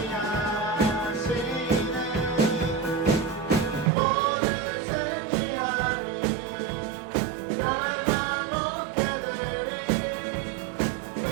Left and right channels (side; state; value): left; drops out; at 3.9 s